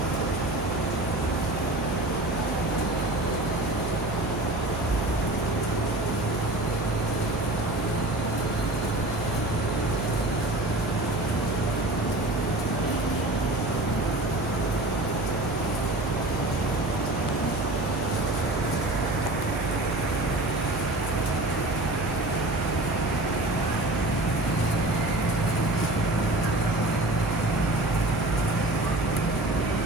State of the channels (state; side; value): noise; right; hum, 7 dB below the sound